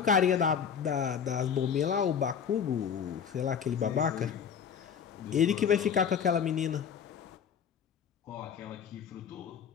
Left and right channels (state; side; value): quieter; right; 7.4 dB